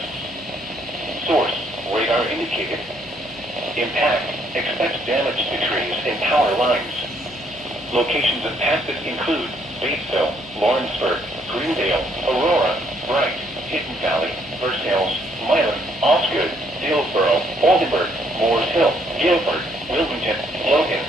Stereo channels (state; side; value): noise; left; hum, 21 dB below the sound